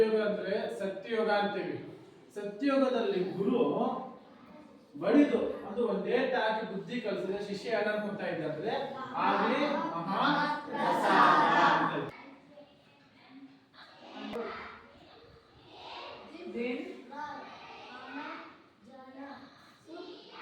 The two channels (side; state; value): both; identical; correlation 1.00